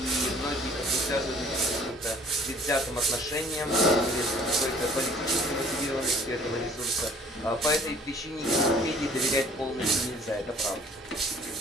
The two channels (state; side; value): normal; both; correlation 0.54